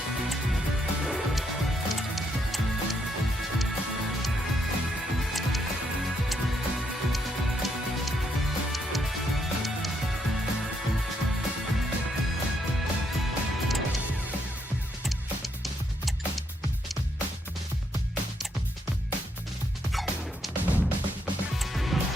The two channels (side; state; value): both; normal; correlation 0.76